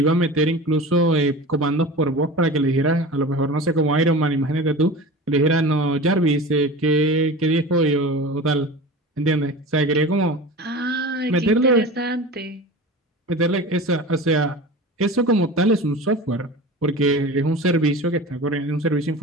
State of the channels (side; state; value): both; normal; correlation 0.33